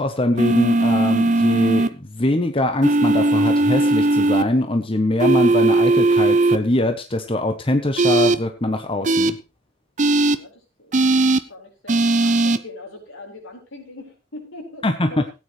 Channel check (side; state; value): both; normal; correlation 0.65